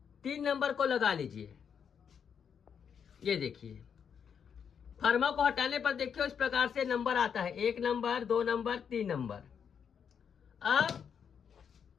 3 नंबर को लगा लीजिए। ये देखिए फर्मा को हटाने पर देखिए इस प्रकार से नंबर आता है, 1 नंबर 2 नंबर 3 नंबर। अब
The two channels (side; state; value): right; quieter; 7.4 dB